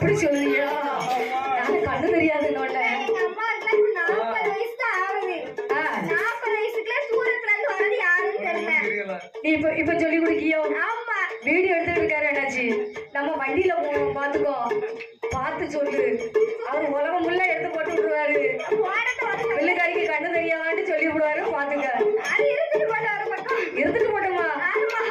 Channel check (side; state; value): both; identical; correlation 1.00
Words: சொல்லியா நான் கண்ணு தெரியாது. எங்க அம்மாவுக்கு 40 வயசு தான் ஆகுது. 40 வயசுக்குள்ள தூரத்துல இருந்து வரது யாருன்னு தெரியல. நீ இப்ப சொல்லி கொடுக்கியோ. ஆமா வீடியோ எடுத்துட்டு இருக்காரு என்னாச்சு நம்ம வண்டியில போவோம் பாத்துக்கோ பார்த்து சொல்லு. அவர் உலகம் முள்ள எடுத்து போட்டு விட்டுருவாரு. பிள்ளைக்காரிக்கு கண்ணு தெரியாதான்னு சொல்லி விடுவாரு. பாத்துக்க இருந்துட்டு போட்டோமா